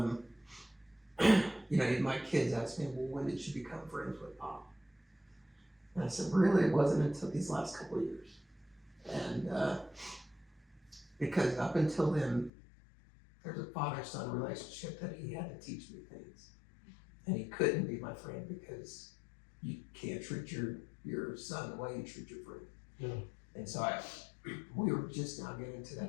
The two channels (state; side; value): drops out; right; at 12.5 s